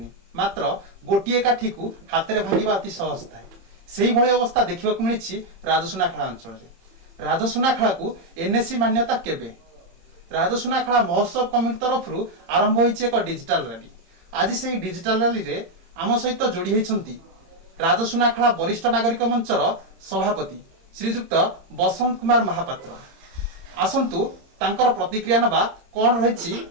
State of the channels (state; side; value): late; left; 30 ms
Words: मात्र गोटे काठी को हाथ में भांगा अति सहज थाए से भली अवस्था देखा मिली राजसुनाखेला अंचल राजसुनाखेला को एनएससी मान्यता केबे राजसुनाखेला महोत्सव कमिटी तरफ आरंभ होइछि एक डिजिटल रैली आज से डिजिटल रैली रे आम सहित जोड़ी होइछंती राजसुनाखेला वरिष्ठ नागरिक मंचर सभापति श्रीजुक्त बसंत कुमार महापात्र आसंतु तांकर प्रतिक्रिया नबा कौन रही